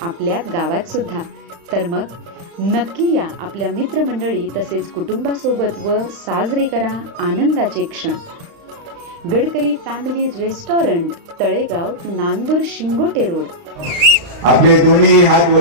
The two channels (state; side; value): late; left; 35 ms